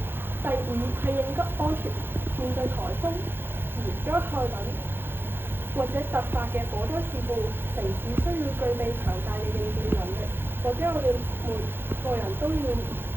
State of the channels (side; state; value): left; late; 0.10 ms